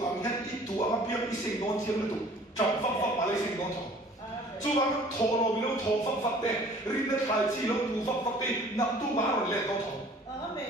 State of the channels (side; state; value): both; normal; correlation 0.51